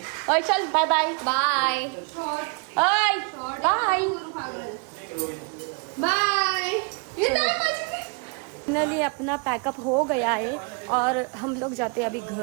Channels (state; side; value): quieter; left; 34.4 dB